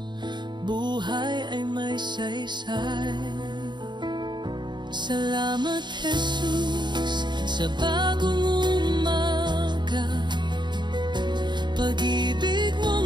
buhay ay may saysay. Salamat, Jesus, sa bagong umaga. Pag-ibig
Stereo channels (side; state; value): left; late; 0.22 ms